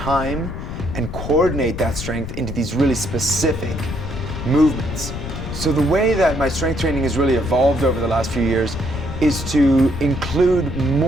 and coordinate that strength into these really specific movements. So the way that my strength training has really evolved over the last few years is to include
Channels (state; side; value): noise; left; rumble, 7 dB below the sound